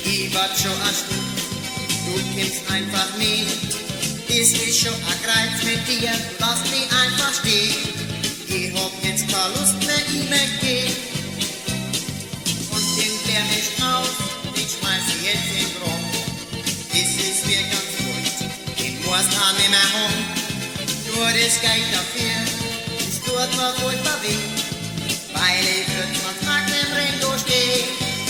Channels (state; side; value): identical; both; correlation 1.00